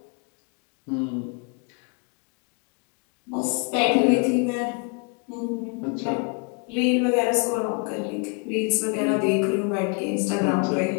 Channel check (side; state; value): right; quieter; 35.2 dB